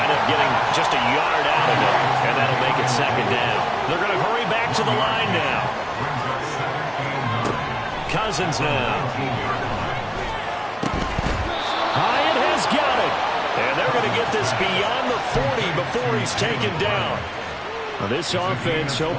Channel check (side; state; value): both; identical; correlation 1.00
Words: up getting just a yard out of it, and that'll make it 2nd down. They're going to hurry back to the line now. Cousins now. Hyatt has got it. And they're going to get this beyond the 40 before he's taken down. Now this offense